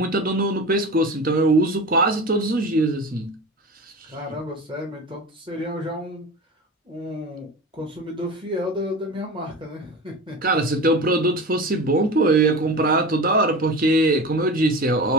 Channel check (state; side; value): normal; both; correlation 0.31